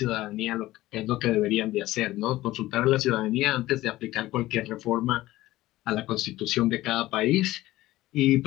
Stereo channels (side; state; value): right; quieter; 16.7 dB